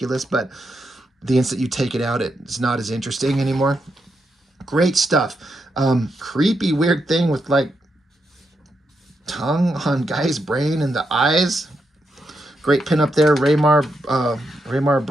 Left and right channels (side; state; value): both; normal; correlation 0.83